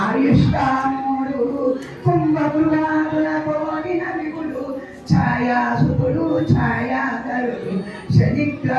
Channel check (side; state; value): both; identical; correlation 1.00